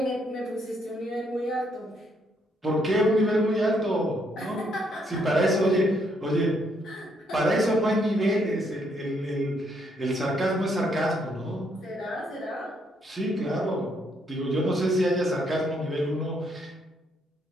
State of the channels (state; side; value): normal; both; correlation 0.72